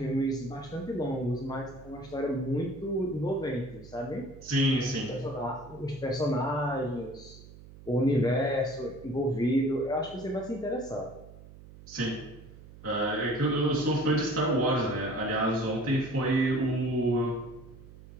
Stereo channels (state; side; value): noise; right; hum, 18 dB below the sound